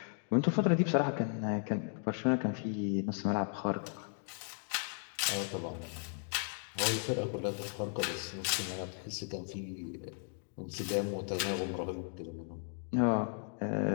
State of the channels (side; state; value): right; silent; 54 dB below the other